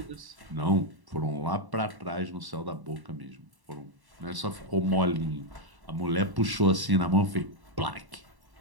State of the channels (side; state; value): left; late; 1.1 ms